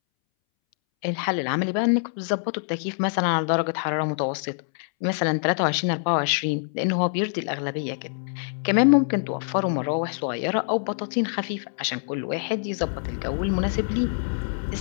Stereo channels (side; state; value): right; silent; 62 dB below the other